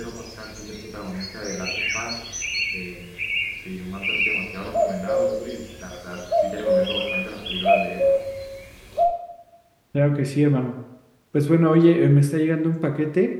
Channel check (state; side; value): identical; both; correlation 1.00